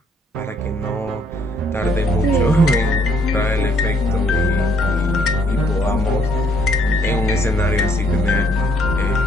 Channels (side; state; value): both; normal; correlation 0.66